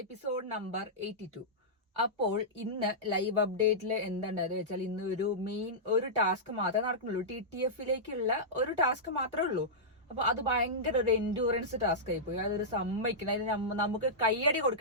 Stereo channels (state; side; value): normal; both; correlation -0.13